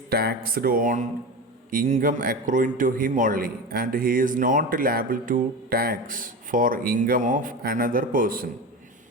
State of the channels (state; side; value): normal; both; correlation 0.26